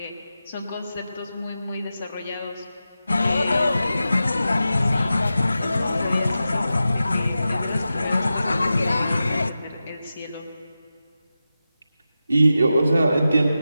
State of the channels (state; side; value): inverted; both; correlation -0.92